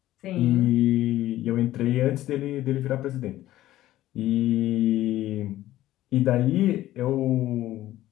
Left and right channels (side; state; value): right; quieter; 14.6 dB